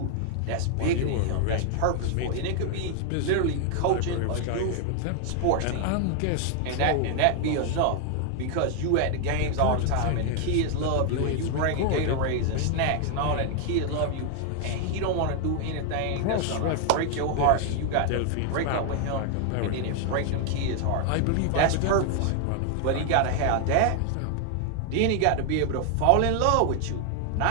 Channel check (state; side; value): different; both; correlation 0.00